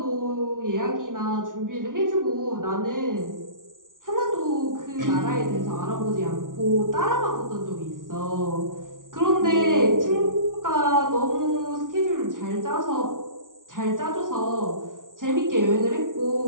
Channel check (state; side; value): late; left; 0.88 ms